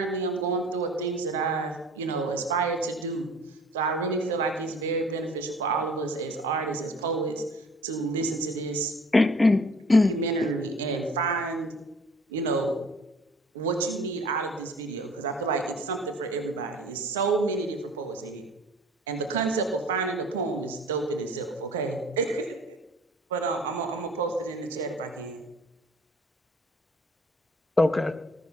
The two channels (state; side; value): normal; both; correlation 0.49